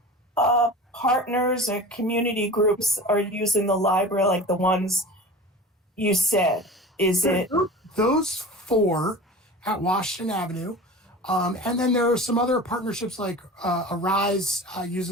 partners or community groups are using the library, like the ones you said? Is it those 4 at Washington Avenue? And then there are some other partnerships like Arise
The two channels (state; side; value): normal; both; correlation 0.36